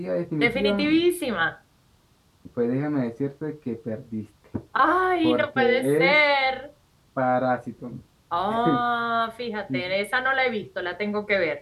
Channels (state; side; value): identical; both; correlation 1.00